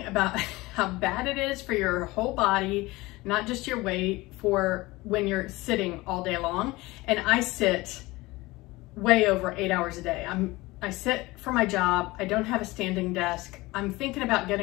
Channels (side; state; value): right; quieter; 20.9 dB